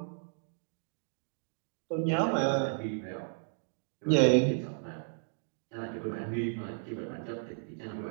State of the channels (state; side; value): silent; left; digital silence